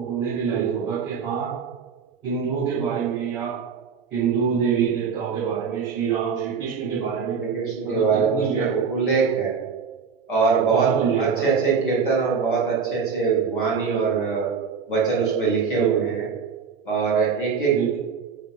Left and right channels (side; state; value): left; quieter; 5.9 dB